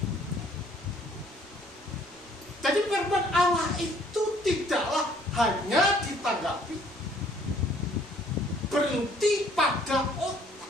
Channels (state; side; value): noise; right; rumble, 29 dB below the sound